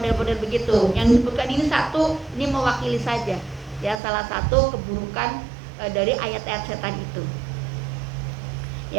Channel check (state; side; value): drops out; left; at 4.0 s